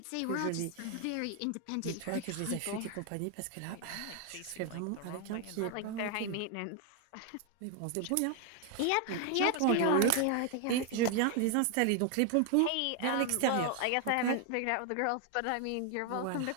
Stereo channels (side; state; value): both; different; correlation 0.00